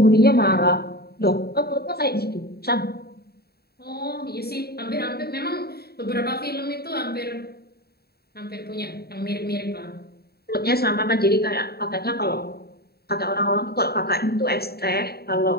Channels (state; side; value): late; right; 0.46 ms